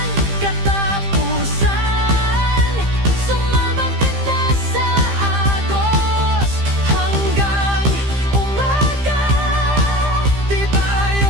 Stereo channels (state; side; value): late; left; 15 ms